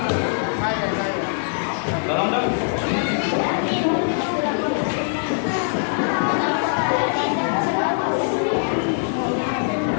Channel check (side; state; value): right; silent; digital silence